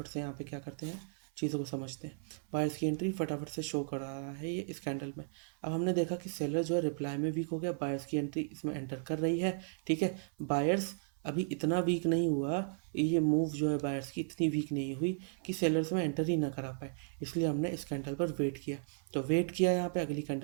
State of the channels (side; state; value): left; silent; 54 dB below the other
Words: से यहाँ पे क्या करते हैं, चीज़ों को समझते हैं। बायर्स की एंट्री फटाफट से शो करा रहा है ये इस कैंडल में। अब हमने देखा कि सेलर जो है रिप्लाई में वीक हो गया, बायर्स की एंट्री इसमें एंटर कर रही है, ठीक है। बायर्स अभी इतना वीक नहीं हुआ, ये मूव जो है बायर्स की इतनी वीक नहीं हुई कि सेलर्स में एंटर ही ना करा पाए, इसलिए हमने इस कैंडल पर वेट किया। तो वेट किया, यहाँ पे अगली